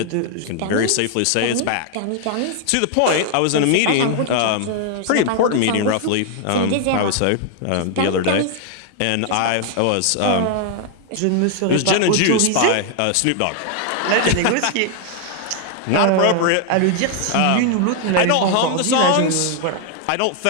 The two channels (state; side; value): different; both; correlation 0.00